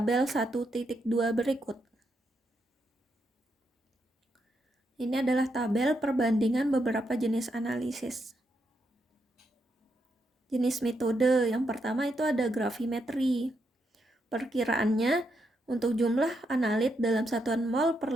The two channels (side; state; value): both; normal; correlation 0.80